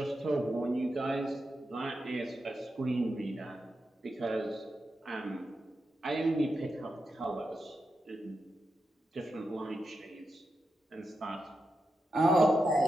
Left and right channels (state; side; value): normal; both; correlation 0.88